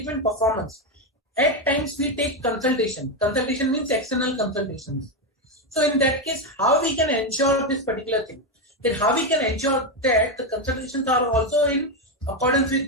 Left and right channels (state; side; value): normal; both; correlation 0.08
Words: performance, at times we take consultation. Consultation means external consultations. So in that case, how we can ensure this particular thing? Then how we can ensure that the consultations are also in accordance with